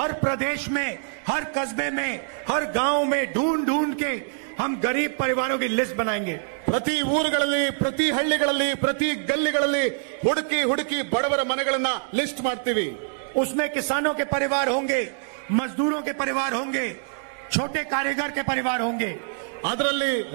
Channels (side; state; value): left; silent; 62 dB below the other